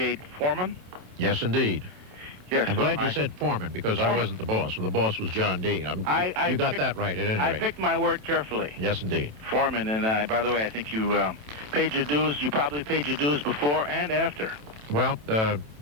foreman. Yes, indeed. Yes, I'm glad you said foreman, because I wasn't the boss. The boss was John D. You got that right, at any rate. I picked my word carefully. Yes, indeed. Foreman, and by the way, I think you paid your dues. You probably paid your dues before and after. Well, at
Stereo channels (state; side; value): late; left; 27 ms